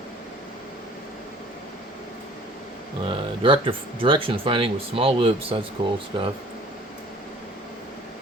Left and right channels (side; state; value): both; normal; correlation 0.51